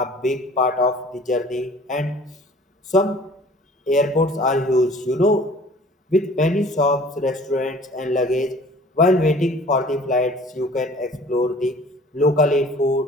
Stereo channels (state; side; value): normal; both; correlation 0.49